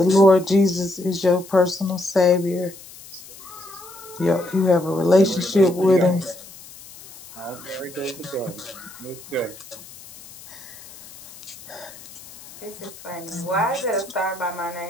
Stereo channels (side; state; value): left; noise; hiss, 18 dB below the sound